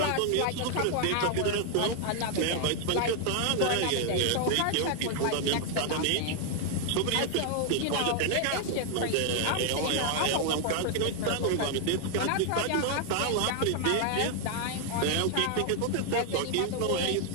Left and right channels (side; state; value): both; different; correlation 0.00